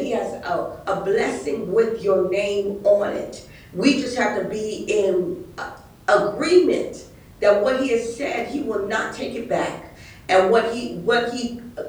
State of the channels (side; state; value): both; identical; correlation 1.00